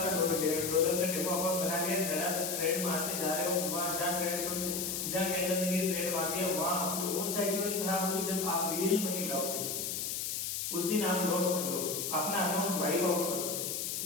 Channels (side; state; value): left; noise; hiss, 2 dB below the sound